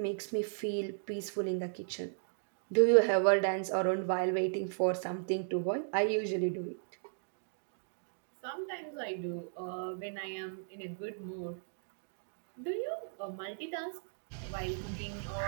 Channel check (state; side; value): silent; left; digital silence